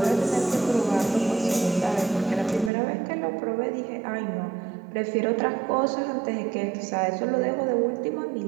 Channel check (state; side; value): drops out; left; at 2.7 s